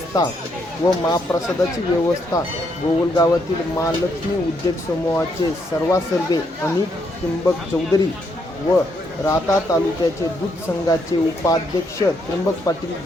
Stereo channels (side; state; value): both; normal; correlation 0.75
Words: व महाप्रसादाची व्यवस्था गोगलगावातील महालक्ष्मी उद्योग समूहाचे सर्वासर्वे अनिल त्र्यंबक चौधरी व राहता तालुक्याचे दूध संघाचे उपाध्यक्ष त्र्यंबक पाटील